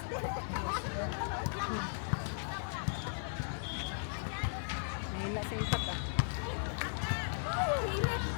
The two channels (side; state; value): right; silent; digital silence